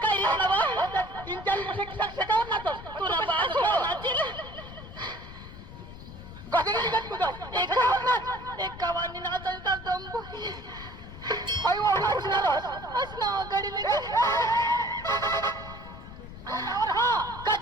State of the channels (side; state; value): left; noise; rumble, 14 dB below the sound